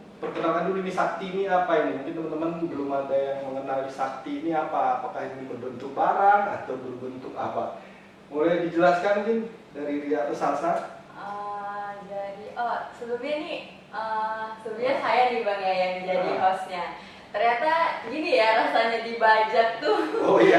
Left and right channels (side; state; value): both; identical; correlation 1.00